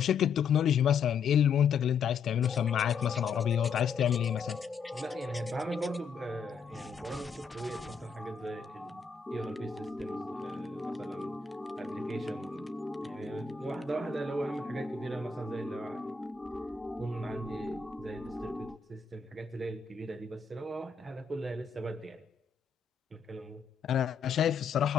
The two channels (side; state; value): right; quieter; 5.8 dB